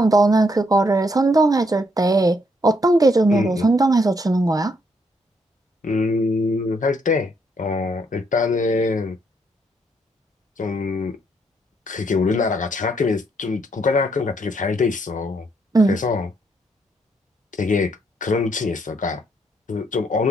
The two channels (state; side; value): normal; both; correlation 0.73